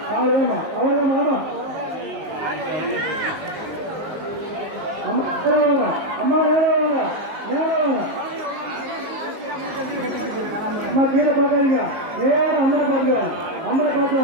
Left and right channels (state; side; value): late; left; 19 ms